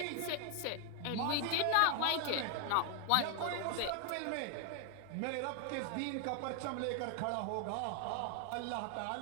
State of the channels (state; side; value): different; both; correlation 0.00